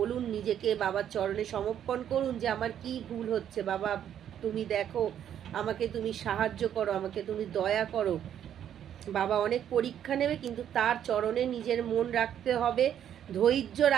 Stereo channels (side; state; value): left; quieter; 9.9 dB